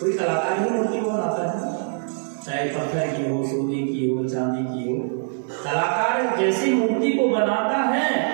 कलाकार ही मूर्ति को बनाता है, चाहे पत्थर की हो, सोने की हो, चांदी की हो। कलाकार जैसी मूर्ति को बनाता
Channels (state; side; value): silent; left; 63 dB below the other